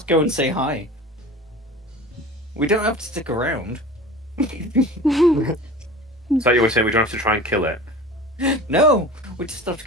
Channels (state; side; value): normal; both; correlation 0.38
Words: go and say hi. We don't have to stick around. So you were saying we don't have to try and kill it? No, we just have to